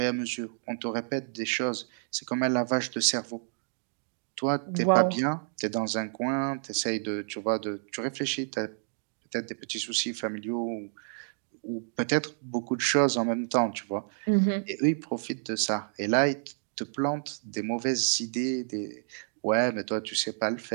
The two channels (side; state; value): left; silent; digital silence